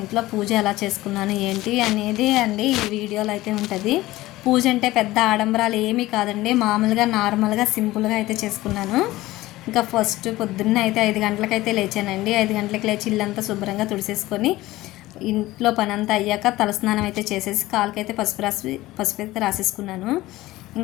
ఇంట్లో పూజ ఎలా చేసుకున్నాను ఏంటి అనేది అండి ఈ వీడియోలో అయితే ఉంటుంది. పూజ అంటే పెద్ద ఆడంబరాలు ఏమీ కాదండి, మామూలుగా నార్మల్గా సింపుల్గా అయితే చేసుకున్నాను. ఇంకా ఫస్ట్ పొద్దున్న అయితే 5 గంటలకైతే లేచానండి. 5 గంటలకు లేచి ఇల్లంతా శుభ్రంగా తుడిసేసుకొని ఇంట్లో పని అంతా అయ్యాక తలస్నానం అయితే చేసేసి కాలుకైతే పసుపు అయితే రాసేసుకున్నాను.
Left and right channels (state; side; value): quieter; right; 17.6 dB